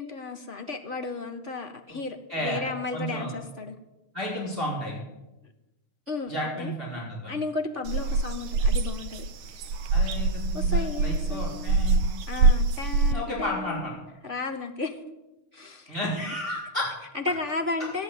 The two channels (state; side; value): late; left; 6.6 ms